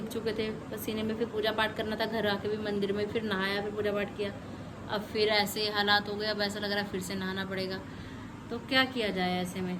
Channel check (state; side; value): identical; both; correlation 1.00